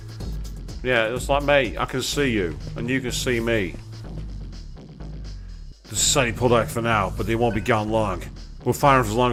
Yeah, it's like, mate, I can see you, and you can see me. The society pulled out for now, but they won't be gone long. We'll fire them for as long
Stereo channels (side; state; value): both; identical; correlation 1.00